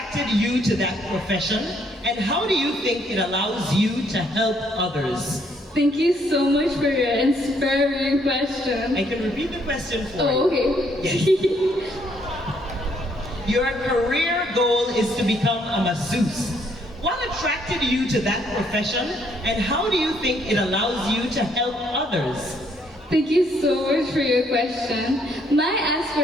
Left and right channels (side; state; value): both; normal; correlation 0.69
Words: you to that profession, and how do you think it allows you to help others? Thank you so much for your inspiring question. I can repeat the question for you. Oh, okay. Yes. Your career goal is to become a masseuse. What attracted you to that profession, and how do you think it allows you to help others? Thank you so much for your question. My